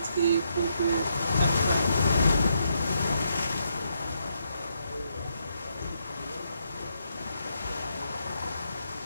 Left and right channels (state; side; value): inverted; both; correlation -0.78